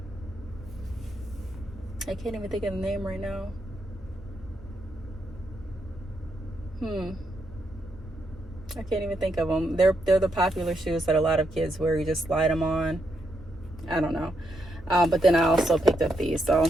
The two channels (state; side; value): normal; both; correlation 0.80